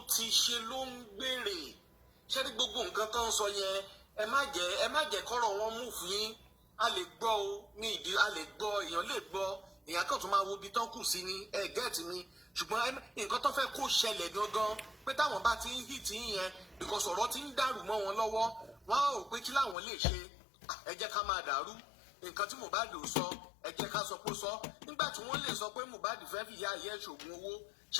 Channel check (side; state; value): right; drops out; at 19.8 s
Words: ti ṣe ló ń gbèrè. Ṣé ní gbogbo nǹkan tó ń sọ yẹn ẹ má jẹ́ kọ́rọ̀ wọn mú fún yín. A lè gbọ́ o ní ìdí a lè gbọ́ èèyàn lè gbọ́ èèyàn kan tó máa wo ibi tán kù sí ní gẹ́ẹ̀tì mi ṣùgbọ́n nǹkan tó fẹ́ kó ṣẹlẹ̀ gangan pé táwọn bá ti ń hì tí yẹn because ọ̀rọ̀ ti ń dàrú mọ́ wọn lọ́wọ́ wọ́n á rò pé kí làwọn lè ṣe ẹ jẹ́ ká máa dàrú nǹkan tí Mohbad ò sọ ẹ jẹ́ ká sọ pé sọ nígbà tí wọ́n lè sọ pé Mohbad fẹ́ fi ìyá ayé ṣògùn owó